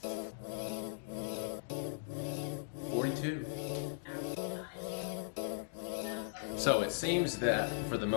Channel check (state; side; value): silent; right; digital silence